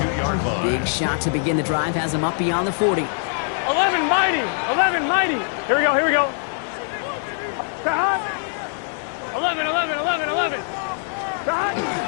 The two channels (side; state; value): right; silent; 64 dB below the other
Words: Big shot to begin the drive has him up beyond the 40. 11 mighty. 11 mighty. Here we go. Here we go. 11.